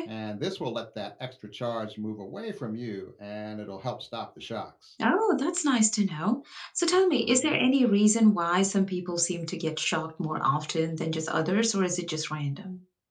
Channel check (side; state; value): both; identical; correlation 1.00